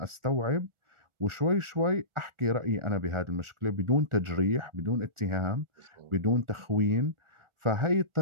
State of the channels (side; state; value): left; late; 1.4 ms